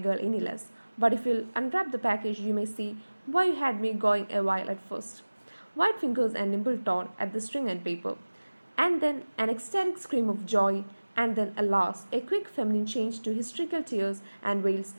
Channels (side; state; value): both; inverted; correlation -1.00